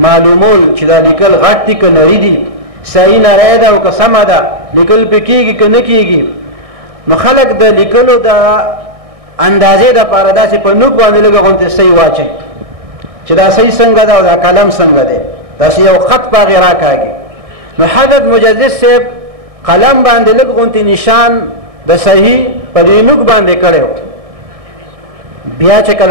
چې دا لیکل غټ دي که نري دي، صحیح نری ده او که سمه ده، لیکل پې کېږي که نه کېږي. نو خلک د لیکلو د اندازې دپاره داسې په نوک باندې لږه غوندې صحیح واچوي چې دا صحیح څنګه ده او دا قلم څنګه دی، داسې یو خط په هغې راکاږي. نو حضرت مجدد صاحب قلم باندې لږ غوندې نشان د صحیح په دې نوک باندې کړی. بیا چې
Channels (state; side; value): late; left; 1.6 ms